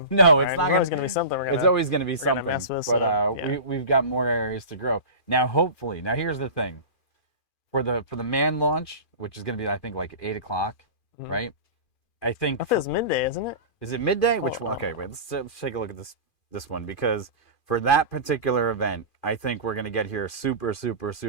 No, it's right? not There's always gonna gonna be something. It's always going to be we're gonna something. mess with, But so, yeah. we've got more areas to grow. Now, hopefully, here's the thing. For the manned launch, which is going to be, I think, like 8 o'clock, Mhm. right? I think. I think it's midday, isn't it? Is it midday? Which Oh, one? wow. Okay, wait. Let's take a look at this one, because for that particular event, I think we're going to get here super, super,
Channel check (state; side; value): late; right; 2.4 ms